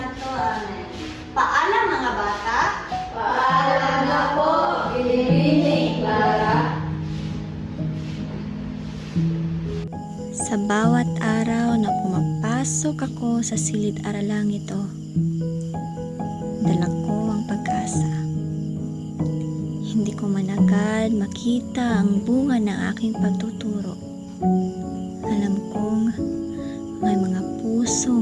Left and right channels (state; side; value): identical; both; correlation 1.00